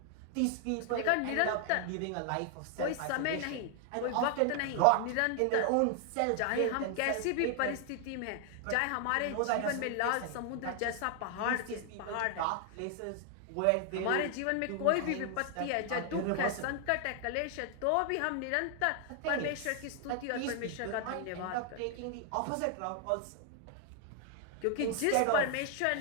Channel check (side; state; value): both; different; correlation 0.00